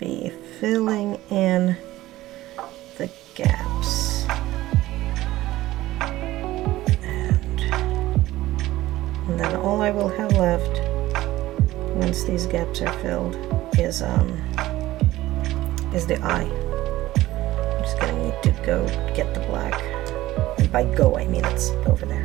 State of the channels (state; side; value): quieter; left; 16.4 dB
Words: filling in the gaps. And then all I will have left once these gaps are filled is the eye. I'm just going to need to go get the black. And by go, I mean it's over